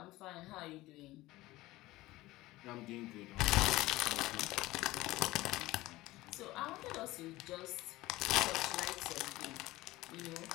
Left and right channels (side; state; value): right; quieter; 18.4 dB